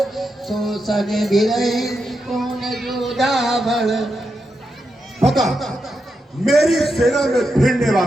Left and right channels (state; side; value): normal; both; correlation 0.86